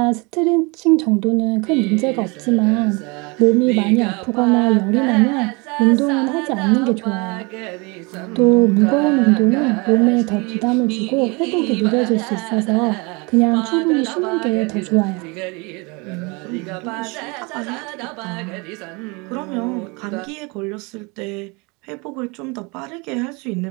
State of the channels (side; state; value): left; quieter; 28.4 dB